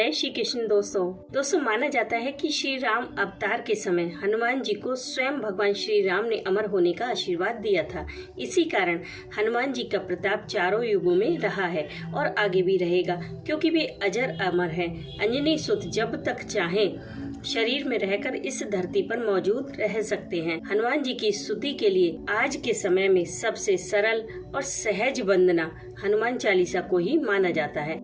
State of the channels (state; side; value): identical; both; correlation 1.00